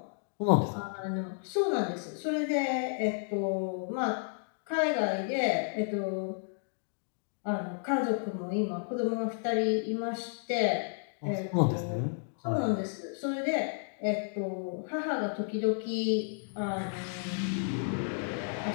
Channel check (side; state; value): right; silent; digital silence